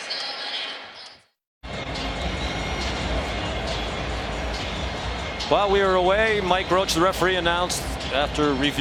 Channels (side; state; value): both; identical; correlation 1.00